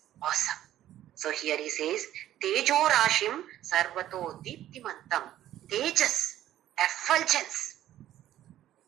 awesome. So here he says, Tejo Rashim Sarvato Deeptimantam. Tejas, effulgence.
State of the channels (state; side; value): quieter; left; 12.7 dB